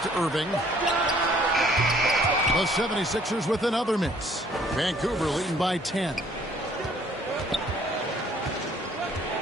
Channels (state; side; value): normal; both; correlation 0.60